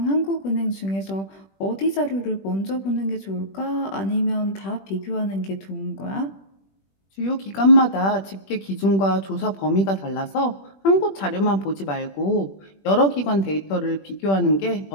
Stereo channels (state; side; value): late; right; 21 ms